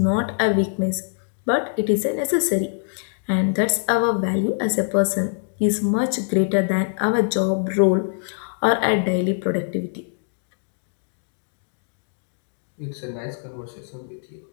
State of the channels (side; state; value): right; silent; digital silence